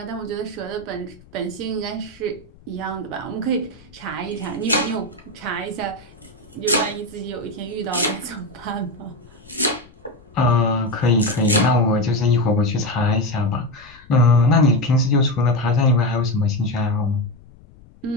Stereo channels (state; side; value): noise; left; rumble, 25 dB below the sound